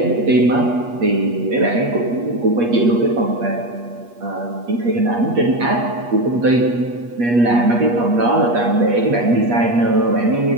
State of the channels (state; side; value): late; left; 8.4 ms